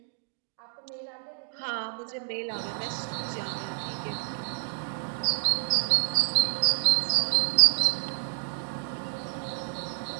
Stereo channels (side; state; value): left; silent; 59 dB below the other